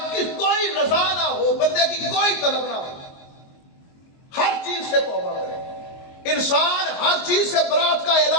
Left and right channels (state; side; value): late; right; 22 ms